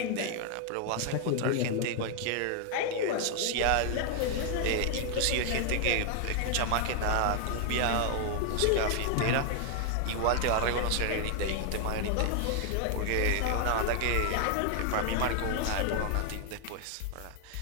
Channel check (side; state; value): both; different; correlation 0.00